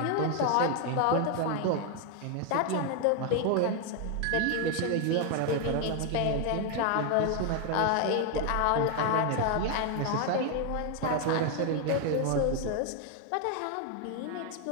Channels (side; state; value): both; different; correlation 0.01